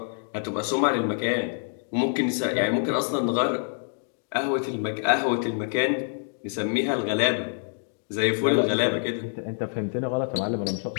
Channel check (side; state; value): right; silent; 61 dB below the other